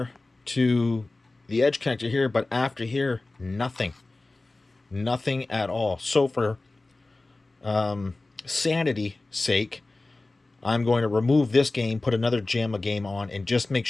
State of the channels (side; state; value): right; quieter; 3.1 dB